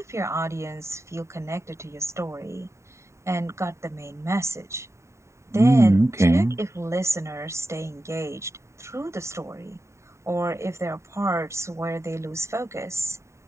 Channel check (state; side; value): late; left; 0.14 ms